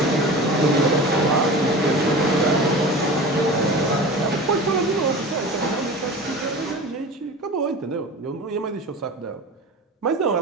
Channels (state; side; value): normal; both; correlation 0.34